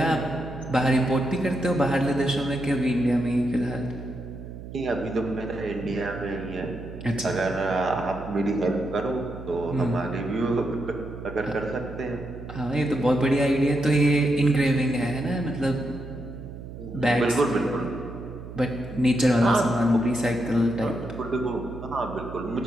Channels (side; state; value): right; noise; hum, 12 dB below the sound